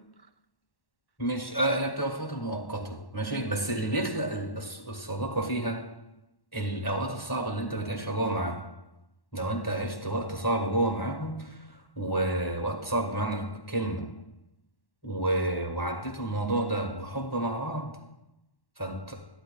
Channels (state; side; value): late; right; 1.1 ms